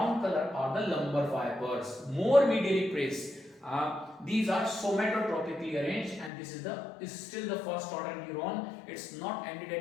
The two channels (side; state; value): right; drops out; at 6.3 s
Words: color are the lumbar fibers, more medially placed. These are somatotropically arranged, and this is still the first order neuron. It's not ended